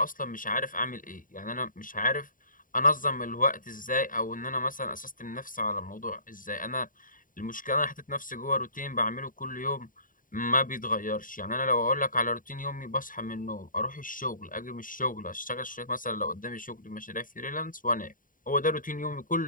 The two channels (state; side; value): late; right; 0.39 ms